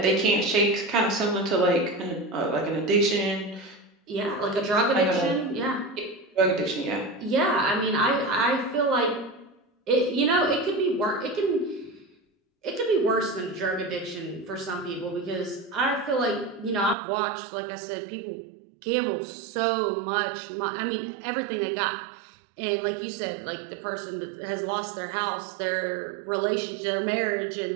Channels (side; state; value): left; drops out; at 16.9 s